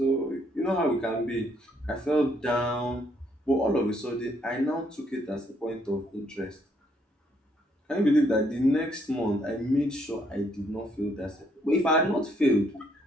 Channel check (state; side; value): normal; both; correlation 0.70